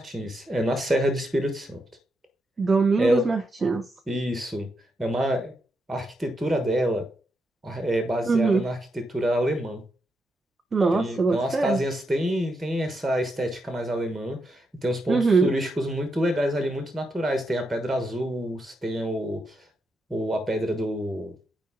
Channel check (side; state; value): both; normal; correlation 0.83